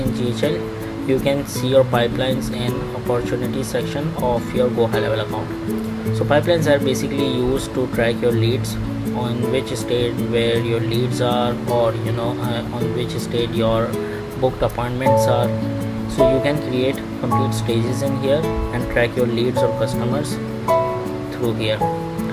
GHL. You can see your pipelines in opportunity section of your GoHighLevel account. So pipelines are basically used to track your leads, on which state where your leads are, or on which state your booked appointments are. So you can create complete stages in here and track your leads or customers through here.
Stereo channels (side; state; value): both; identical; correlation 1.00